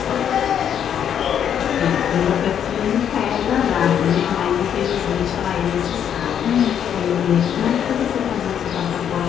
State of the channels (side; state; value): right; quieter; 9.0 dB